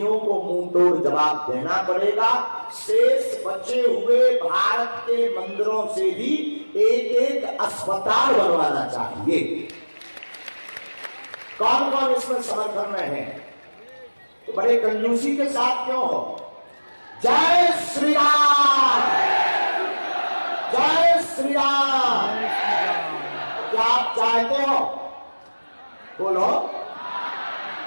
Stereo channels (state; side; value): inverted; both; correlation -1.00